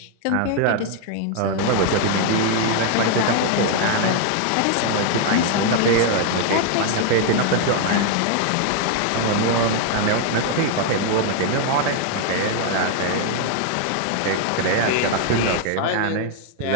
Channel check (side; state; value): both; different; correlation 0.00